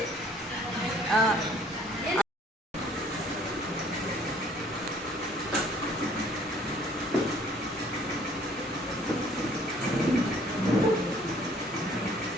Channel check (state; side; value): normal; both; correlation 0.58